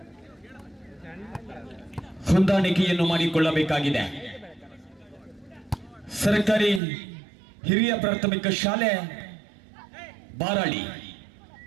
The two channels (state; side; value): drops out; left; at 6.8 s